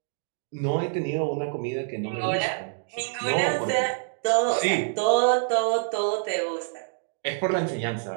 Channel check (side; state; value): left; silent; digital silence